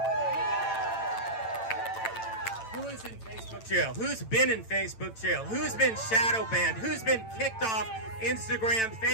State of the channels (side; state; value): right; late; 9.0 ms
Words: Who is in Facebook jail? Who's been in Facebook jail? Who's been shadow banned? Who's been kicked off Instagram,